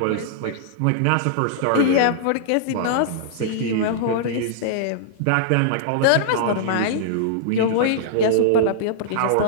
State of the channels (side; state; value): both; different; correlation -0.01